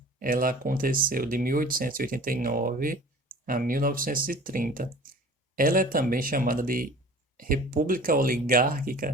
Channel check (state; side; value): normal; both; correlation 0.44